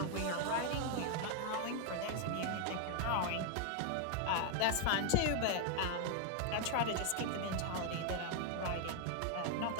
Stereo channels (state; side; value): different; both; correlation 0.00